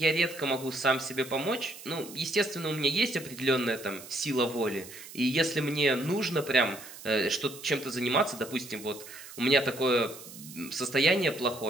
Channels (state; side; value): noise; right; hiss, 15 dB below the sound